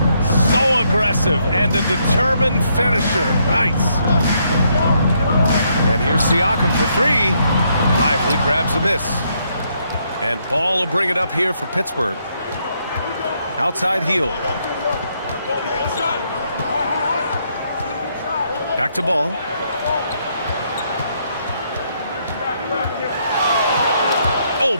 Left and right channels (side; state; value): both; inverted; correlation -0.74